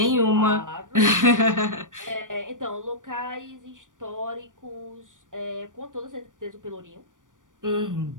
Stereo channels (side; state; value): left; late; 0.88 ms